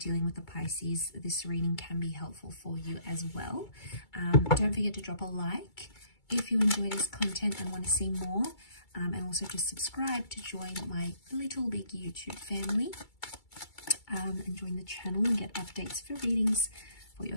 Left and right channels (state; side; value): late; right; 2.3 ms